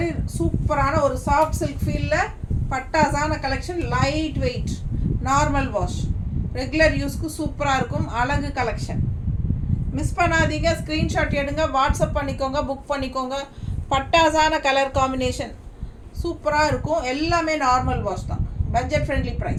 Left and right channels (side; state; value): both; identical; correlation 1.00